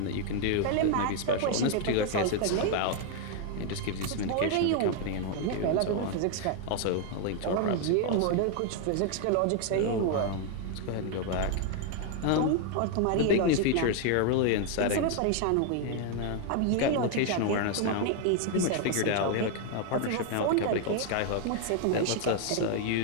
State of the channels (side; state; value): both; different; correlation 0.00